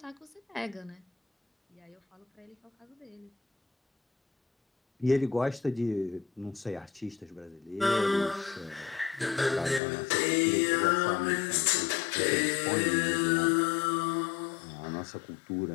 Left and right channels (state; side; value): drops out; right; at 9.8 s